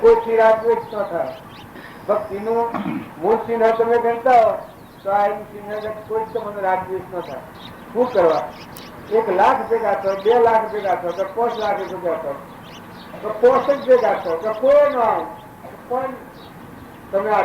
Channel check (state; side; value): identical; both; correlation 1.00